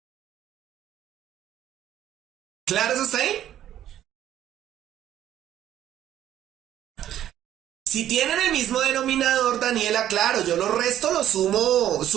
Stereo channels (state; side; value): quieter; left; 11.7 dB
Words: ¿Claro eso está ahí? Si tienen el mismo denominador, Daniela, claro, yo lo resto, lo sumo,